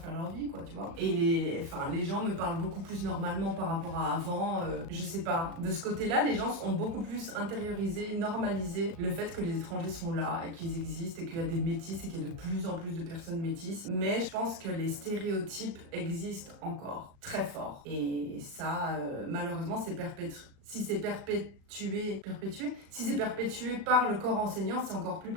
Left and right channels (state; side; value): late; left; 36 ms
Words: leur vie, quoi, tu vois. Et les gens me parlent beaucoup plus normalement par rapport à avant. Je sais pas. De ce côté-là, les gens ont beaucoup plus intériorisé, normalisé le fait que les étrangers sont là et qu'ils existent et qu'il y a des métis et qu'il y a de plus en plus de personnes métisses. Mais je pense que les stéréotypes existent encore très fort. Et ça, malheureusement, c'est Si c'est perpétué, si c'est perpétué par le corps enseignant, c'est encore plus